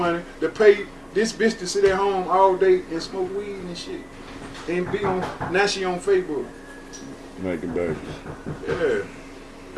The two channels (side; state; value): both; identical; correlation 1.00